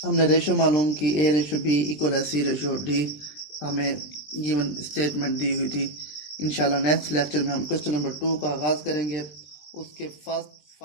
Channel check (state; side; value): late; right; 20 ms